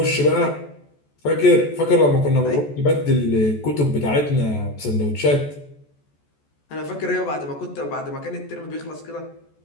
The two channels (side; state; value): right; late; 14 ms